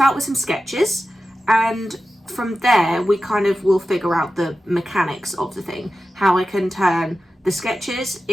with some sketches, and from there we kind of will figure out the mechanics of the thing, how I can turn the sketches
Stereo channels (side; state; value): both; normal; correlation 0.93